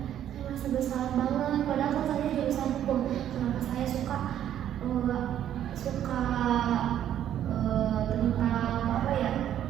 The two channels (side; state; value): left; quieter; 10.8 dB